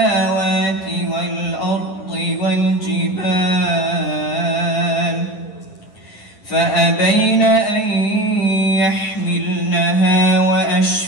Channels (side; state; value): right; late; 9.9 ms